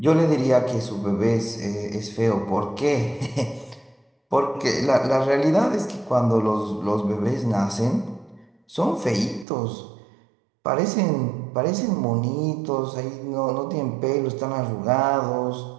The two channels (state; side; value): drops out; left; at 9.5 s